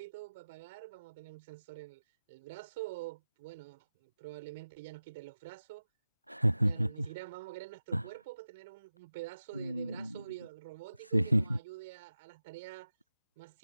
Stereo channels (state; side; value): inverted; both; correlation -0.93